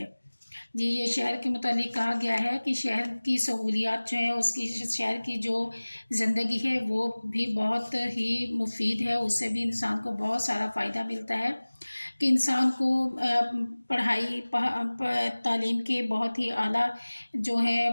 جی یہ شہر کے متعلق کہا گیا ہے کہ شہر کی سہولیات جو ہیں، اس کی شہر کی جو زندگی ہے وہ بھی بہت ہی مفید ہے، اس سے بھی انسان کو بہت سارا فائدہ ملتا ہے کہ انسان کو پڑھائی تعلیم کے بہت ہی اعلیٰ جو ہے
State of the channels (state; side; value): inverted; both; correlation -1.00